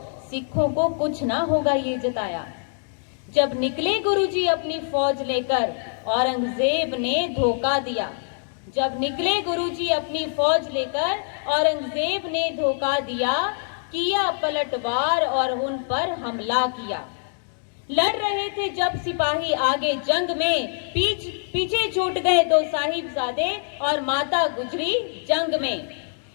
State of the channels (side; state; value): right; silent; 62 dB below the other